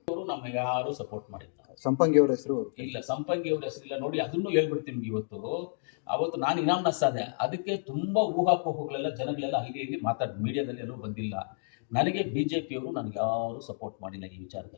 ಅವರು ನಮಗೆ ಯಾರು ಸಪೋರ್ಟ್ ಮಾಡಿಲ್ಲ. ಸಂಪಂಗಿ ಅವರ ಹೆಸರು ಇಲ್ಲ, ಸಂಪಂಗಿ ಅವ್ರ ಹೆಸರಿಲ್ಲ. ನೋಡಿ, ಅದನ್ನು ಹೇಳ್ಬಿಡ್ತೀನಿ. ಅವತ್ತು ನಾನು ಇನಾಮ್ನಸ್ ಆದೆ. ಅದಕ್ಕೆ ತುಂಬಾ ಊಹಾಪೋಹಗಳೆಲ್ಲ ಜನಗಳೆಲ್ಲ ಇಲ್ಲಿ ಮಾತಾಡ್ ಮೀಡಿಯಾದಲ್ಲಿ ಎಲ್ಲೂ ಬಂದಿಲ್ಲ. ನನಗೆ BJP ಅವರು ನನಗೆ ಯಾರು ಸಪೋರ್ಟ್ ಮಾಡಿಲ್ಲ ಈ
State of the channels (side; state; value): right; silent; digital silence